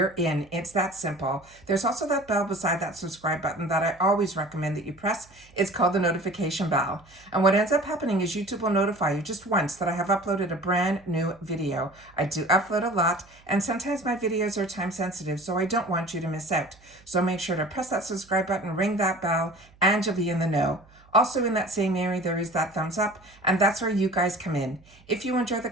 in. It's that simple. There's also that bell beside that subscribe button that I always recommend that you press. It's called the notification bell. And what ends up happening is YouTube will notify you just once that I have uploaded a brand new video. I do upload a lot, and sometimes my videos are time sensitive, so I don't want you to miss out. So make sure to press that subscribe button, ring that bell, and you'll be in the know. Also in that same area, there is that thumbs up, and that's where you guys come in. If you enjoy the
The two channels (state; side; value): noise; right; hum, 27 dB below the sound